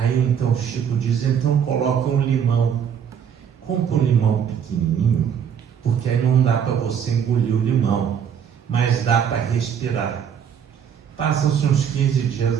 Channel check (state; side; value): quieter; left; 8.0 dB